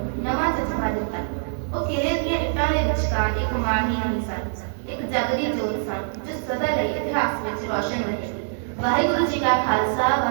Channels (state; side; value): silent; left; digital silence